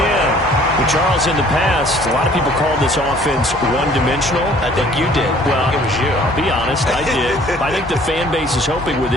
But Charles, in the past, a lot of people called this offense one-dimensional. I think you did. Well, it was you. I'll be honest, I did. I think the fan base is hoping with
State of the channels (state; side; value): normal; both; correlation 0.55